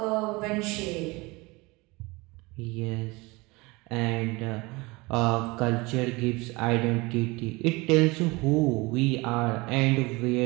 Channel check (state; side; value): quieter; left; 24.2 dB